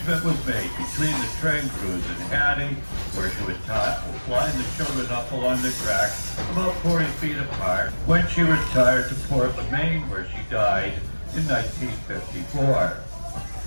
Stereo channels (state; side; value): inverted; both; correlation -1.00